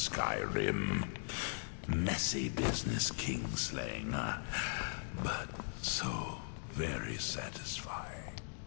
Messy business kingslaying, but so very satisfying.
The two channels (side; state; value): right; silent; digital silence